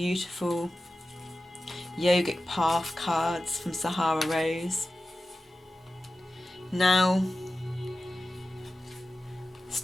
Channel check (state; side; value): normal; both; correlation 0.94